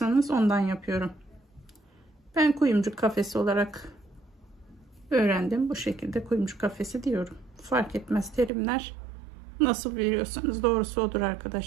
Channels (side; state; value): left; drops out; at 8.5 s